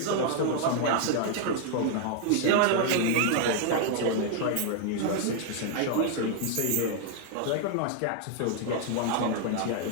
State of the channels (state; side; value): different; both; correlation 0.00